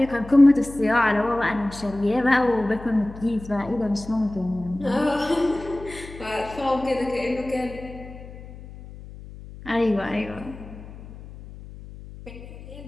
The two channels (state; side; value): noise; left; hum, 15 dB below the sound